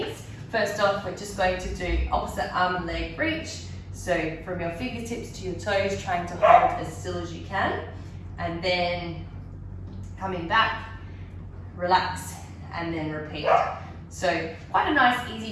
First off, we're just going to do opposite arm and leg reach. So from your fingertips to your toes, trying to hold as still as you can. And then coming back, relax, and then repeat. So quite a nice,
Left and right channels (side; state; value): both; identical; correlation 1.00